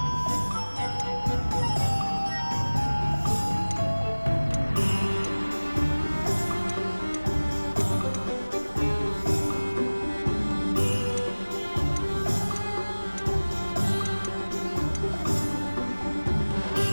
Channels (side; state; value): both; inverted; correlation -1.00